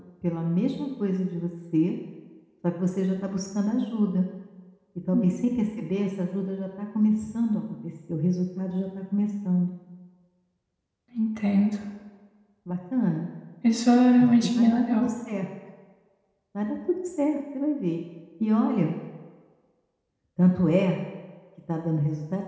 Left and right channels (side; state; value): both; identical; correlation 1.00